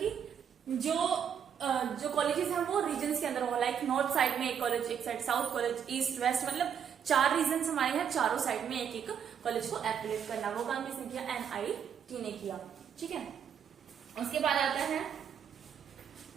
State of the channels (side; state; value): left; quieter; 8.1 dB